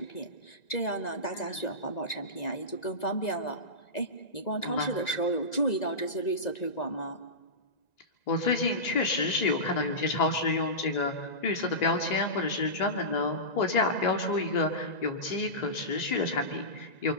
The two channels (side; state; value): right; late; 1.9 ms